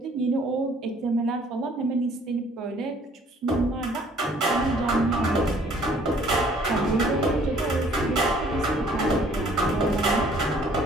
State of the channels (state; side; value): normal; both; correlation 0.58